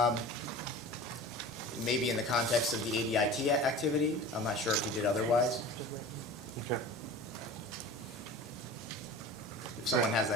Maybe in the context of the ADIT activity. I'm not sure if he did otherwise. Okay. If someone has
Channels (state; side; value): normal; both; correlation 0.37